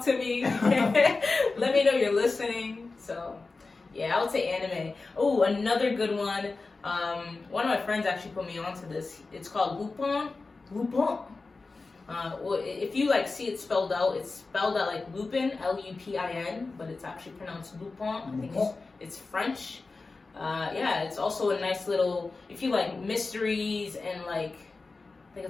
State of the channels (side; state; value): right; quieter; 3.8 dB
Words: to me. Let me know you're listening. So yeah, I would say anime. Oh, another good one. One of my friends actually put me onto this. It's called Lupin. Lupin. Well, if you like see it spelled out, it's spelled out like Lupin, Lupin, but it's actually pronounced Lupin. I think it's French. Yeah, it's also a nice little, if you like mysteries and like, I think